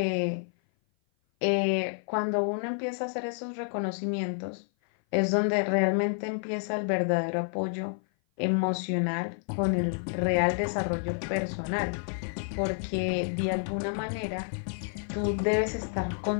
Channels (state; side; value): silent; right; 55 dB below the other